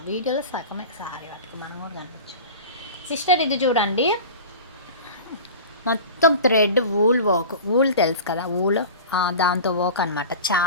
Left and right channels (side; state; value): both; inverted; correlation -0.35